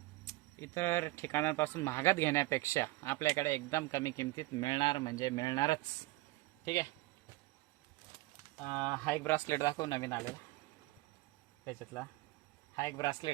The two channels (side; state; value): left; quieter; 19.8 dB